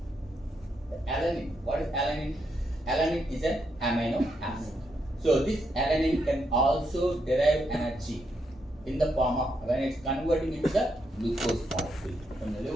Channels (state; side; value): normal; both; correlation 0.80